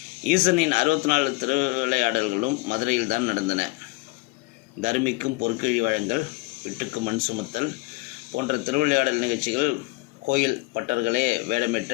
ஈசனின் 64 திருவிளையாடல்களும் மதுரையில் தான் நடந்தன. தர்மிக்கும் பொற்கிழி வழங்கல், விட்டுக்கு மண் சுமத்தல் போன்ற திருவிளையாடல் நிகழ்ச்சிகள் கோயில் பட்டர்களே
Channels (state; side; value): quieter; right; 22.8 dB